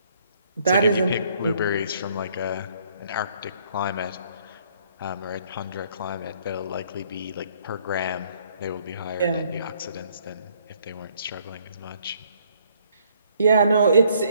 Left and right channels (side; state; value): both; inverted; correlation -0.65